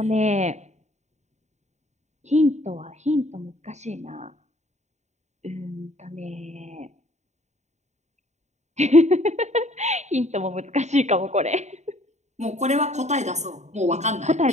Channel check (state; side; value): late; left; 0.33 ms